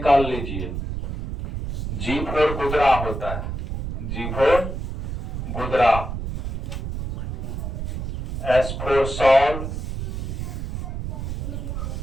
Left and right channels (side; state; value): right; noise; rumble, 4 dB below the sound